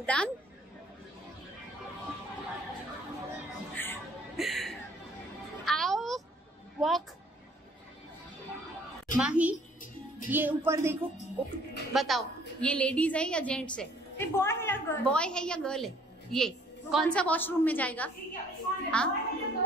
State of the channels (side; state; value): both; normal; correlation 0.58